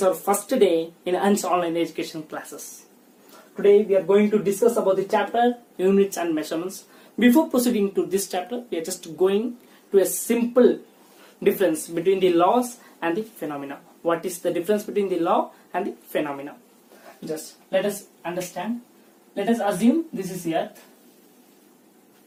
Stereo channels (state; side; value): identical; both; correlation 1.00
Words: our first day in ANS online education classes. Today we are going to discuss about the chapter units and measurements. Before proceeding to this chapter, we are just going to a simple difference between the laws and the phenomena. What is the difference between the law and the phenomena? Just let us understand. Let us assume this is Earth.